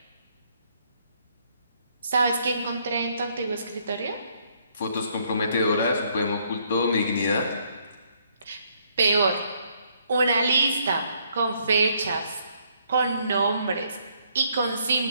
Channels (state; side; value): inverted; both; correlation -0.69